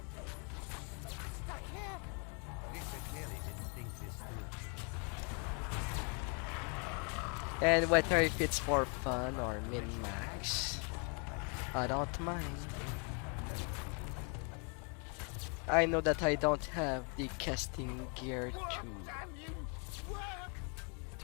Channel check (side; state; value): right; quieter; 37.6 dB